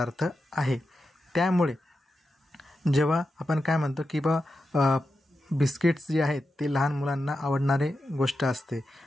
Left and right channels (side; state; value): both; normal; correlation 0.89